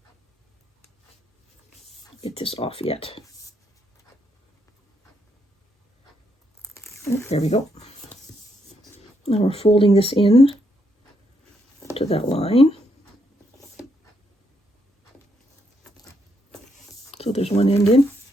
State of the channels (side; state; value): both; normal; correlation 0.76